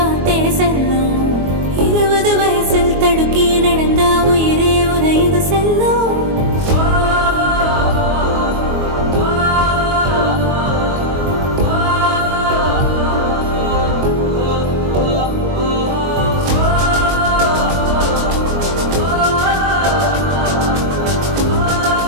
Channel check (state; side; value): late; left; 22 ms